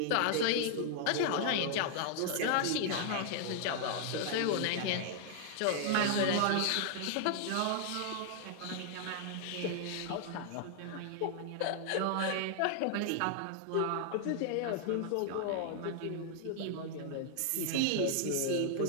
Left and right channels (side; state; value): both; different; correlation 0.00